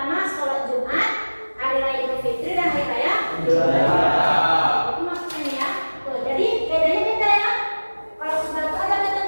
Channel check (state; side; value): inverted; both; correlation -1.00